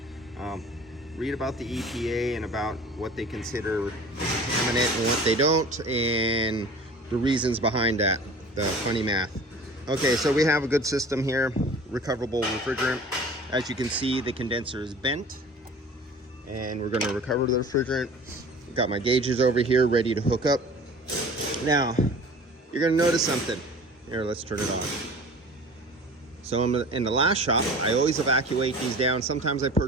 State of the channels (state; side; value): normal; both; correlation 0.42